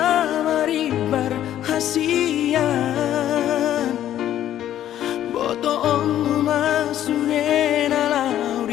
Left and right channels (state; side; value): quieter; right; 11.7 dB